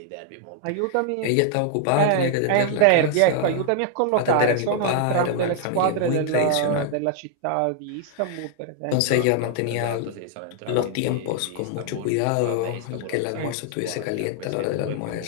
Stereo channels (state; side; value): different; both; correlation 0.00